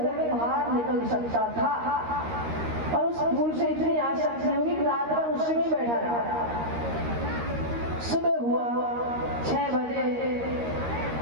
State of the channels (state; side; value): late; left; 13 ms